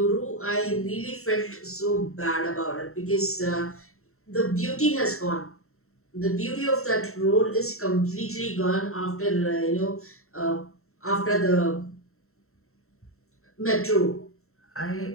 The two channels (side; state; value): right; late; 0.63 ms